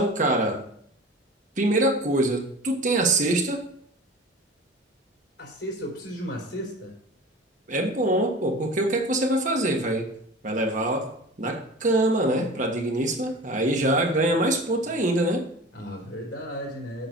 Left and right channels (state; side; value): normal; both; correlation 0.38